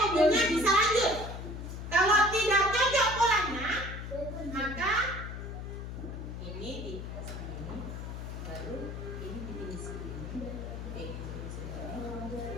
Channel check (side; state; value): left; noise; hum, 7 dB below the sound